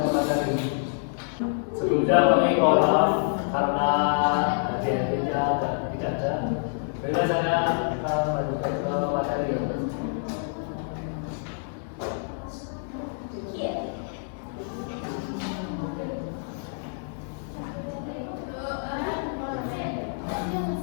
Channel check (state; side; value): silent; right; 60 dB below the other